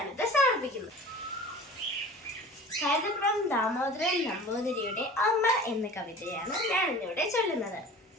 സമർപ്പിക്കുന്നു. കൈതപ്രം ദാമോദരൻ നമ്പൂതിരിയുടെ അമ്മ എന്ന കവിതയാണ് ഞാൻ ഇന്നിവിടെ ചൊല്ലുന്നത്.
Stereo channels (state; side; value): normal; both; correlation 0.40